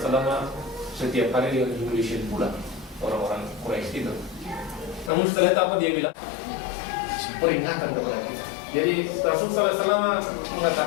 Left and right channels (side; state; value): right; drops out; at 5.1 s